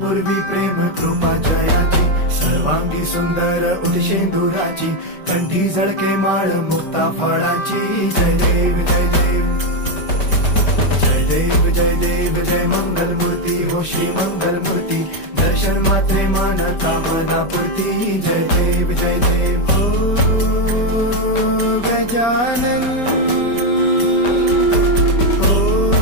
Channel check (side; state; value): right; late; 5.1 ms